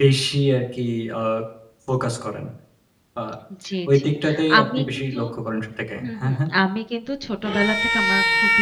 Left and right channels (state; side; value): identical; both; correlation 1.00